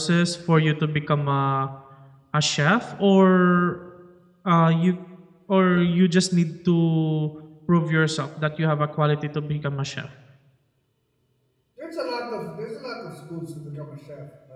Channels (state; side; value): identical; both; correlation 1.00